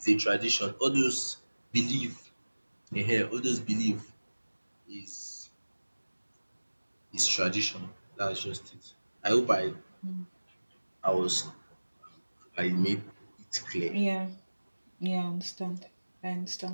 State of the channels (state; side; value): inverted; both; correlation -1.00